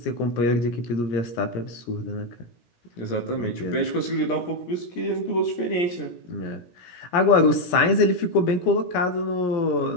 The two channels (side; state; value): right; late; 17 ms